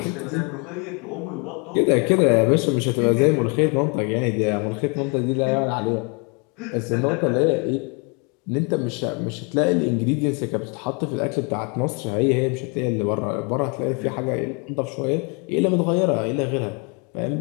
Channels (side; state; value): right; quieter; 33.2 dB